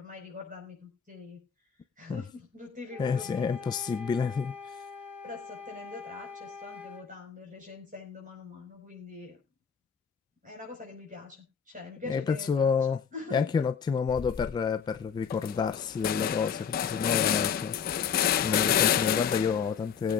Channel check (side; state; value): right; quieter; 6.9 dB